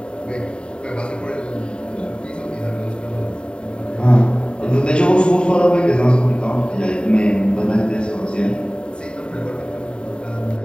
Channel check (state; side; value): late; right; 0.052 ms